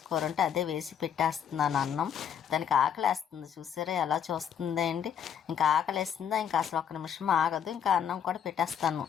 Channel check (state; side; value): quieter; right; 8.7 dB